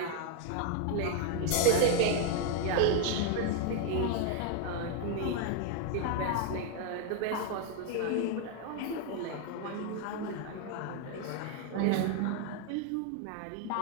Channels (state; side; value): different; both; correlation 0.01